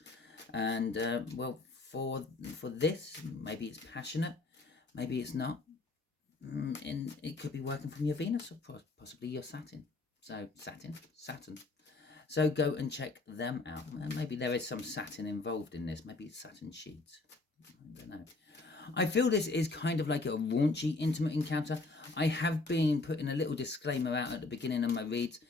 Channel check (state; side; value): quieter; right; 3.5 dB